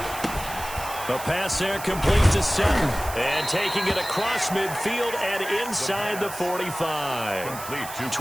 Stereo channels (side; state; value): right; noise; hiss, 11 dB below the sound